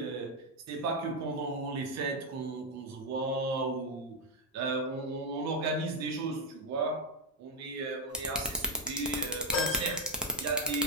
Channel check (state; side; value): normal; both; correlation 0.02